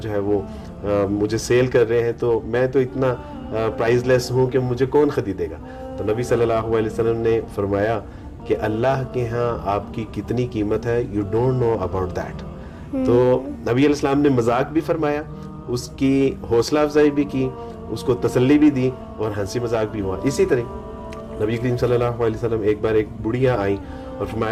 ہے وہ مجھے سیل کر رہے ہیں تو میں تو اتنا پرائز لیس ہوں کہ مجھے کون خریدے گا. تو نبی صلی اللہ علیہ وسلم نے فرمایا کہ اللہ کے ہاں آپ کی کتنی قیمت ہے، you don't know about that. تو نبی علیہ السلام نے مذاق بھی فرمایا، اس کی حوصلہ افزائی بھی کی، اس کو تسلی بھی دی اور ہنسی مذاق بھی ہوا. اسی طرح نبی کریم صلی اللہ علیہ وسلم ایک بار ایک بڑھیا آئیں اور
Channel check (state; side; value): identical; both; correlation 1.00